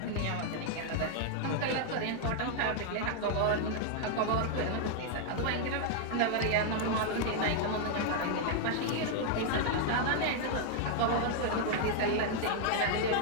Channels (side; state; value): both; different; correlation 0.00